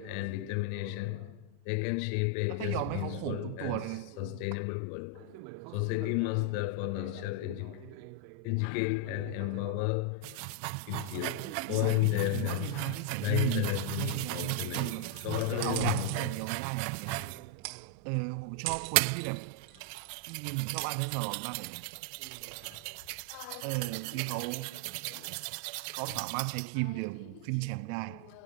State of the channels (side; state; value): both; different; correlation 0.00